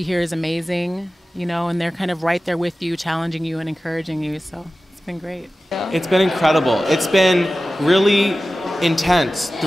here is amazing, you know, and they're kind of right there with you, challenging you and encouraging you. So it's been great. It's been incredible. It's been really intense.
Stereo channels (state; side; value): normal; both; correlation 0.95